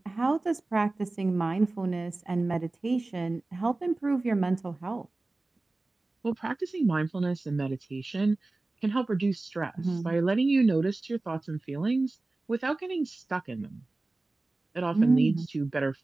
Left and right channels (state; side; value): quieter; left; 3.1 dB